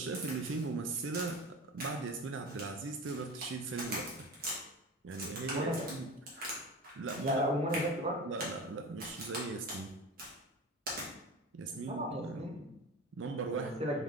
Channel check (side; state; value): both; normal; correlation 0.32